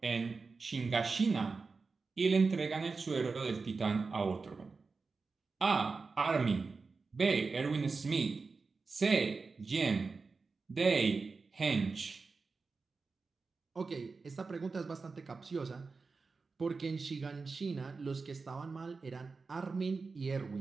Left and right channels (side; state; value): left; quieter; 4.3 dB